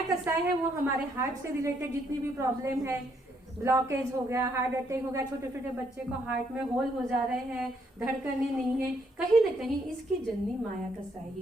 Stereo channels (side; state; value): both; normal; correlation 0.72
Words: कसाय है वो हमारे हार्ट से रिलेटेड जितनी भी प्रॉब्लम है, ब्लॉकेज हो गया, हार्ट अटैक हो गया, छोटे छोटे बच्चे को हार्ट में होल हो जा रहे हैं, धड़कने नहीं है, कहीं ना कहीं इसकी जननी माया कसाई